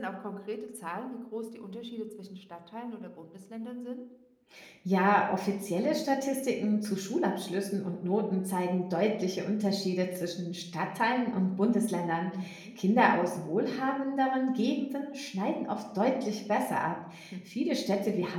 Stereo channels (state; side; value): identical; both; correlation 1.00